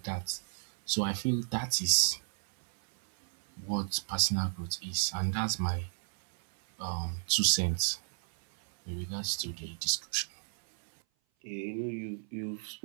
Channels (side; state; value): left; silent; 56 dB below the other